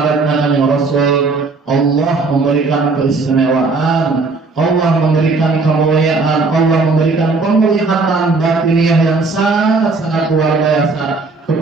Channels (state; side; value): quieter; left; 3.9 dB